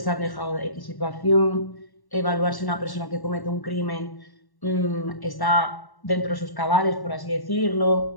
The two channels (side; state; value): right; late; 1.1 ms